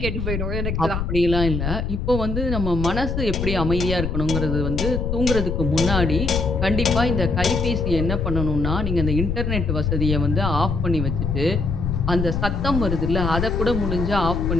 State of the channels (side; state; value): left; noise; rumble, 2 dB below the sound